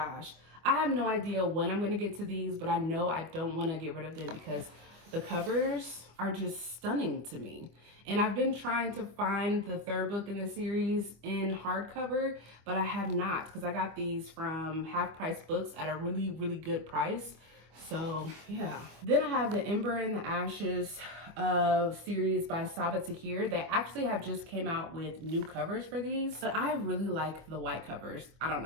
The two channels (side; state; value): left; late; 25 ms